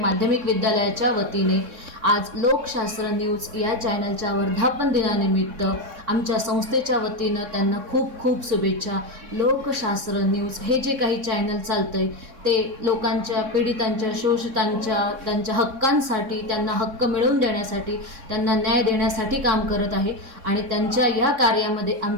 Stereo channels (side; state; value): left; late; 3.6 ms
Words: विद्यालयाच्या वतीने आज लोकशास्त्र न्यूज या चॅनलच्या वर्धापन दिनानिमित्त आमच्या संस्थेच्या वतीनं त्यांना खूप खूप शुभेच्छा। लोकशास्त्र न्यूज हे जे काही चॅनल चालतंय ते लोकांच्या पीडितांच्या शोषितांच्या त्यांच्या हक्कांसाठी त्यांना हक्क मिळवून देण्यासाठी त्यांना न्याय देण्यासाठी काम करत आहे आणि त्यांच्या या कार्यामध्ये